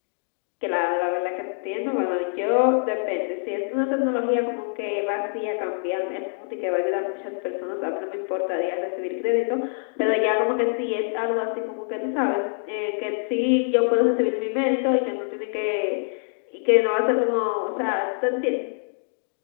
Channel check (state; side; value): silent; right; digital silence